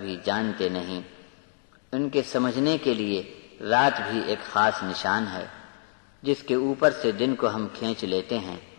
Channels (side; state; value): right; silent; digital silence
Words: جانتے نہیں۔ ان کے سمجھنے کے لیے رات بھی ایک خاص نشان ہے جس کے اوپر سے دن کو ہم کھینچ لیتے ہیں